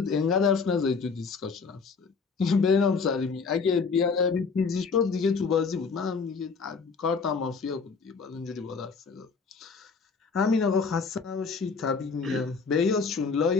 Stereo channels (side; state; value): right; quieter; 5.0 dB